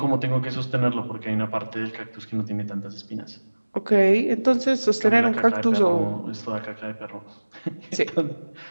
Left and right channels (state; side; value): inverted; both; correlation -1.00